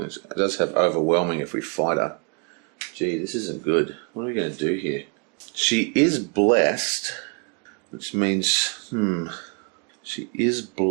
does have overwhelming if we fight her. Gee, this isn't good. What are we going to do here? She is blessed, which means, she is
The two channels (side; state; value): left; quieter; 36.1 dB